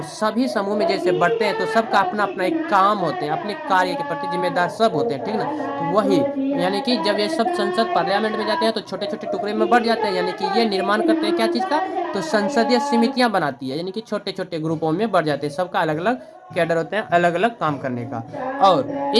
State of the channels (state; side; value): identical; both; correlation 1.00